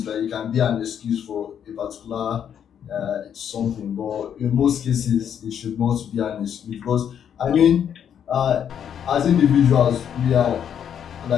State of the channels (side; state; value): right; quieter; 8.8 dB